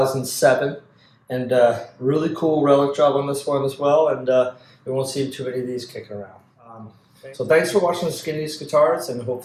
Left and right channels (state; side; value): identical; both; correlation 1.00